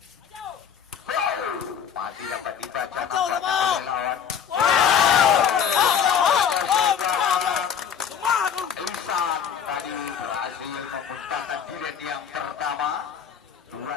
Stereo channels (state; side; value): quieter; right; 7.9 dB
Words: Masih dapat dibaca angka lawan. Isan tadi berhasil membentangkan jilat yang pertama